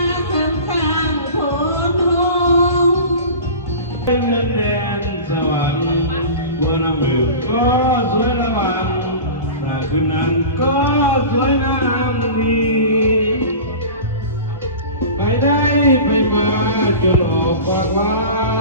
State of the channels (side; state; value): both; inverted; correlation -0.35